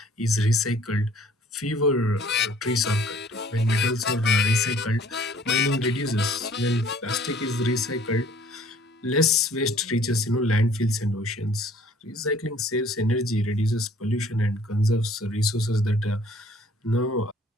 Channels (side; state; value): both; normal; correlation 0.55